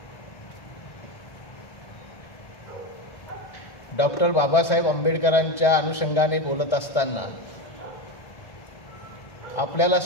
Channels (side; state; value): right; late; 2.0 ms